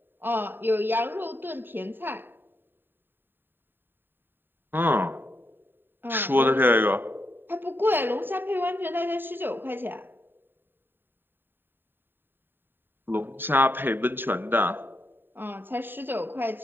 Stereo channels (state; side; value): late; left; 0.096 ms